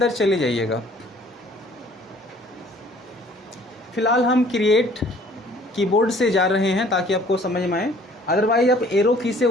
चले जाइएगा। फिलहाल हम क्रिएट कीबोर्ड से जा रहे हैं ताकि आपको समझ में आए। अदरवाइज आप एरो की से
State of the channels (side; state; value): both; normal; correlation 0.56